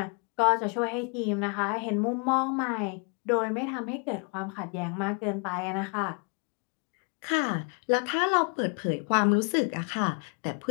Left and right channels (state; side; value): quieter; right; 35.5 dB